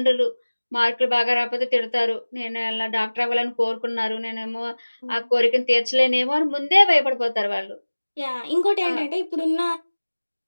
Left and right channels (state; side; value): inverted; both; correlation -1.00